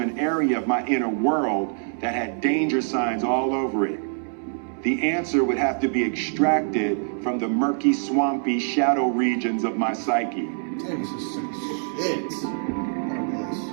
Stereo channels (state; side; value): silent; left; 62 dB below the other